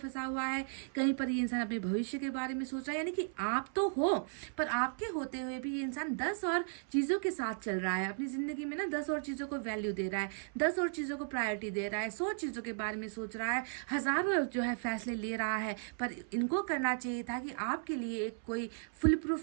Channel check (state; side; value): silent; left; 54 dB below the other